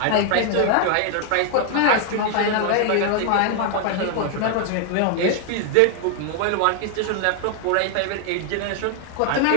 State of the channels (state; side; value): different; both; correlation 0.00